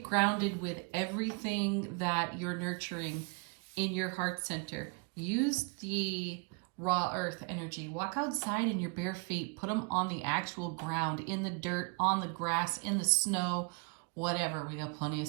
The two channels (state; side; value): quieter; left; 33.2 dB